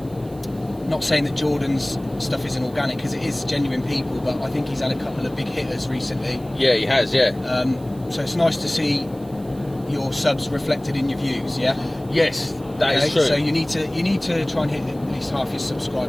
Not saying that Jordan's stuff isn't organic, because it is genuine people, but I think he's had a couple of big hitters recently. Yeah, he has. Yeah. So it's nice to see your subs reflected in your views. Yeah. Yes, that is true. So you need to try and hit at least half your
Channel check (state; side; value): noise; right; hiss, 25 dB below the sound